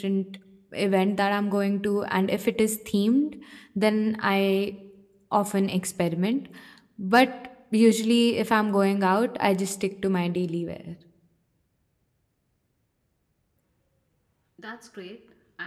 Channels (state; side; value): identical; both; correlation 1.00